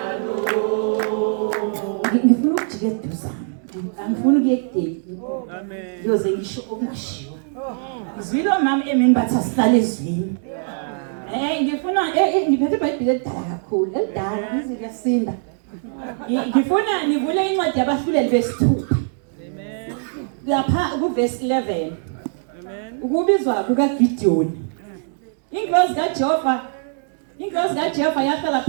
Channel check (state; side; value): silent; left; digital silence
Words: Ngifuna ukujikeduza. Angifuni ukuyekudeni. Amen. Yoze ngisho okungashiwo. Izwilo mama emini bathi asihlale ezwini. Ngifuna ngiphethe iBhayibheli elidala kakhulu, elidala izi kuyasinda. Ngifuna nivule incwadi yabahluleli besithupha. Amen. Lapha kuverse 11. Amen. Ukubizwa kukaGideon. Inkosi kaJehova yahlala